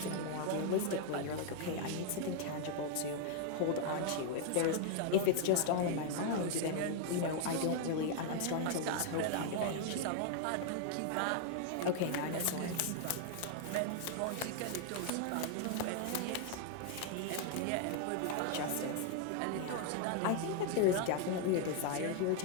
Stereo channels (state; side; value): different; both; correlation 0.00